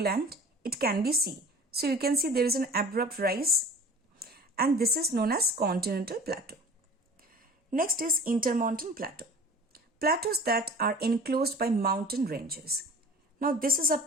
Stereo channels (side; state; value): both; normal; correlation 0.42